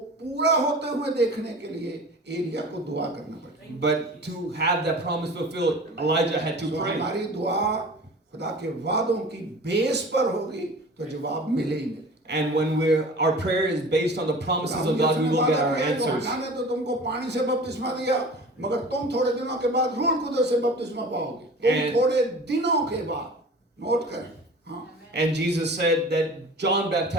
पूरा होते हुए देखने के लिए एलिया को दुआ करना पड़ता. But to have that promise fulfilled, Elijah had to तो pray. हमारी दुआ खुदा के वादों की बेस पर होगी तो जवाब मिले ही मिले. And when our prayer is based on the promises of God, we will get our answers. यूहन्ना ने तो तुमको पानी से बपतिस्मा दिया, मगर तुम थोड़े दिनों के बाद रूह कुदस से बपतिस्मा पाओगे. तुम And- थोड़े दिनों के बाद, नोट करें. हाँ. And Jesus said that John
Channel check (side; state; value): both; normal; correlation 0.40